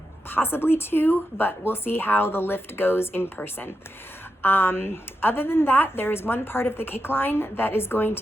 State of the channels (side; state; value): both; normal; correlation 0.87